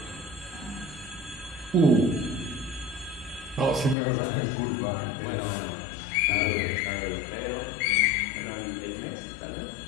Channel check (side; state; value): right; drops out; at 4.0 s